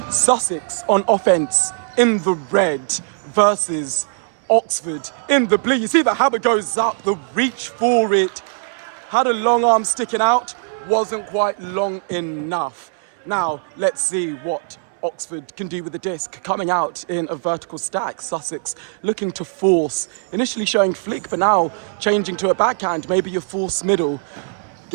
Sussex on offence in the red versus Oxford in the blue. You see the hammer goes up, the reach for it. Had a long arm sticking out, wasn't quite long enough. Now, let's see what Oxford can do with the disc, coming out in a vertical stack. Sussex looking to force, initially showing flick, but now changing to a backhand, maybe a force middle.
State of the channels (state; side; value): silent; left; 64 dB below the other